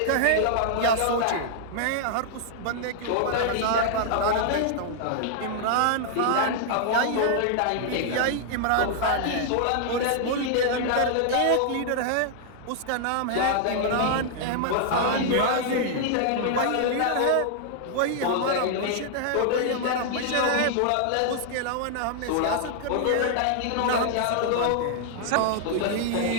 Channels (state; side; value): different; both; correlation -0.01